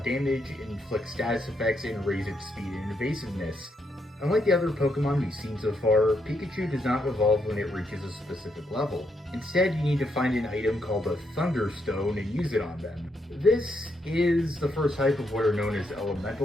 inflict status effects, and raise its speed and evasiveness. Unlike the other Pokemon we've seen so far, Pikachu does not evolve when it reaches a specific level. Instead, you need to find an item called a Thunderstone and use it on them. This is the first type of what are known as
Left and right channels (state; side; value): normal; both; correlation 0.78